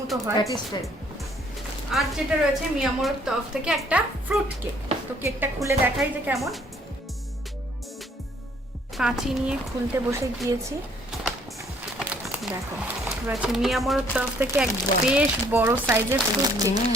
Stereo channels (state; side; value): normal; both; correlation 0.63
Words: হয়, প্যাটিস টাইপ। আর যেটা রয়েছে মিয়ামোরের তরফ থেকে একটা ফ্রুট কেক। তো কেকটা খুলে দেখাই যে কেমন। কাঁচি নিয়ে খুলতে বসে গিয়েছি। দেখো রয়েছে মিয়ামোরের তরফ থেকে এক বেশ বড় সাইজের ফ্রুট কেক।